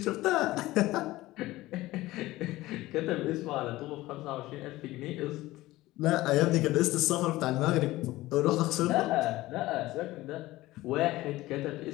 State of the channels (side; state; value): right; quieter; 17.8 dB